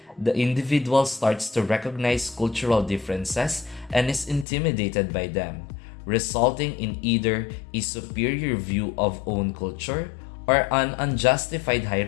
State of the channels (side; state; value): right; drops out; at 4.5 s